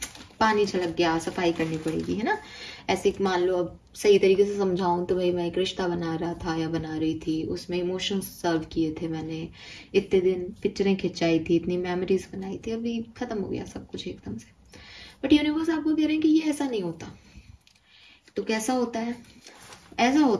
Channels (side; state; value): both; identical; correlation 1.00